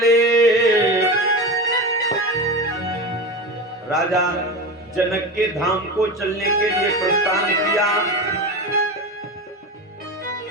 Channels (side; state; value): both; normal; correlation 0.24